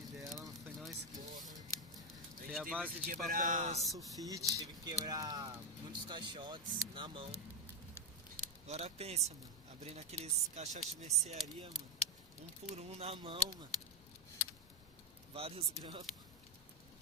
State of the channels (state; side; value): normal; both; correlation 0.04